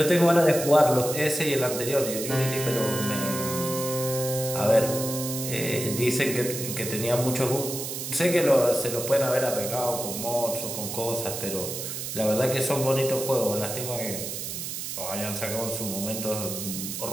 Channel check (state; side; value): noise; right; hiss, 6 dB below the sound